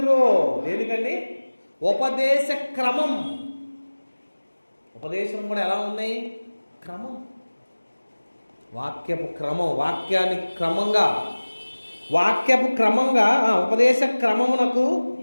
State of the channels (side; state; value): both; inverted; correlation -1.00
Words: దేనికండి? ఉపదేశ క్రమం. ఉపదేశం కూడా ఎలా ఉన్నాయి? క్రమం. వాక్యపు క్రమం. వాక్యపు క్రమంగా ఉపదేశ క్రమమునకు